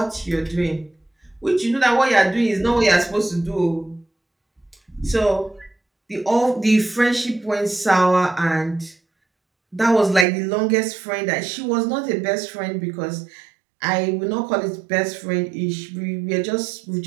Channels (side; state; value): left; drops out; at 10.2 s